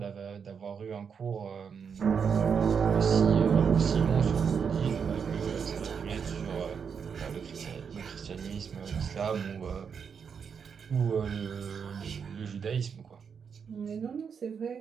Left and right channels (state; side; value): quieter; left; 6.6 dB